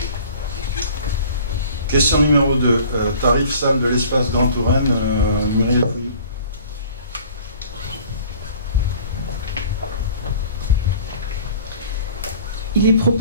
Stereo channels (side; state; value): both; inverted; correlation -0.49